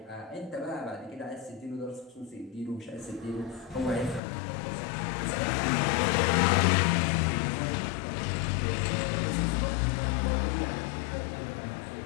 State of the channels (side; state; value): right; drops out; at 4.2 s